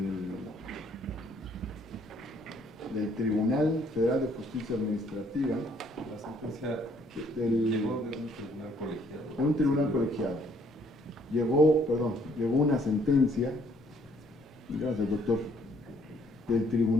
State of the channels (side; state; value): both; normal; correlation 0.65